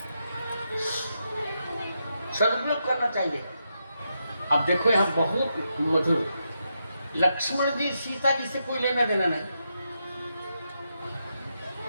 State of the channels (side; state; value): both; inverted; correlation -0.83